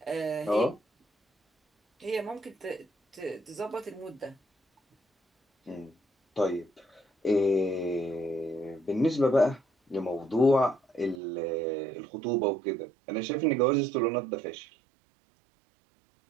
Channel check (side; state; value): left; drops out; at 11.2 s